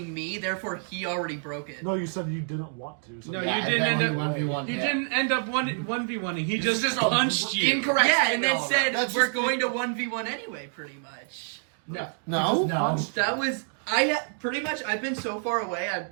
me, therefore he already broke it. No, you said you didn't want to. So No, Yeah, you and didn't then end he up. 1v1 You him. didn't end up 1v1ing. He This just is a punched you. incorrect Yeah, and statement, then all said That's we're just going to 1v1 anyway, pretty much. No. No? No. That was pretty much. I've been so far away.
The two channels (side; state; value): left; silent; 60 dB below the other